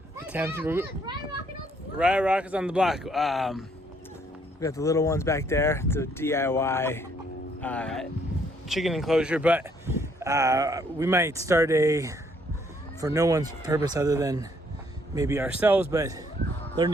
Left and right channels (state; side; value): normal; both; correlation 0.67